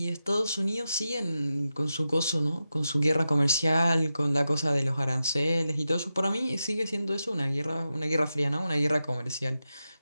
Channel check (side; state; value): both; inverted; correlation -0.90